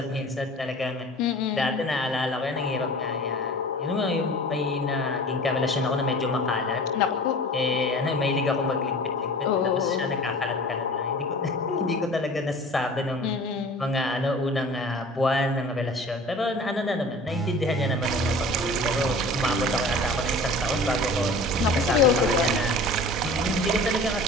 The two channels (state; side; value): normal; both; correlation 0.41